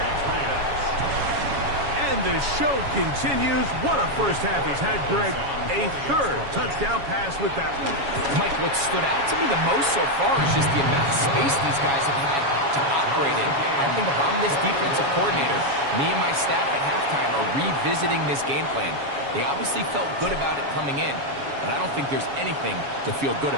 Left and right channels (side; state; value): left; late; 7.2 ms